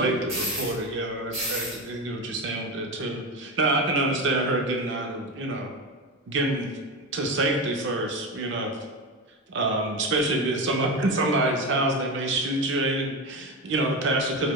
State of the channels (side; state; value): both; normal; correlation 0.19